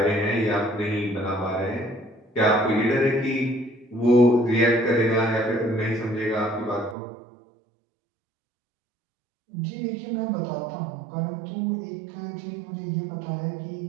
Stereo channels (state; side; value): drops out; left; at 7.0 s